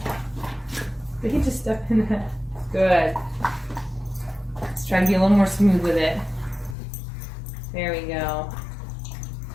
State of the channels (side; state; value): right; drops out; at 6.8 s